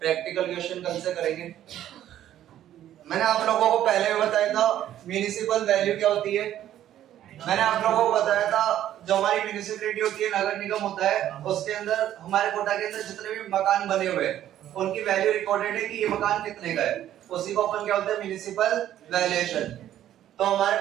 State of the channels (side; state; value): left; quieter; 11.9 dB